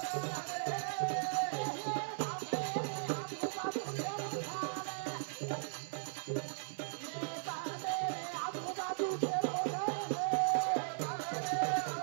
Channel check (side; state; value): left; silent; 53 dB below the other